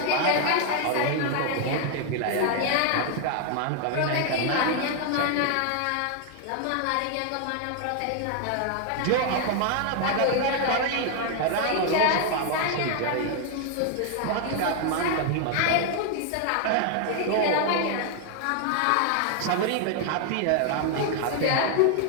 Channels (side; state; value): both; different; correlation 0.00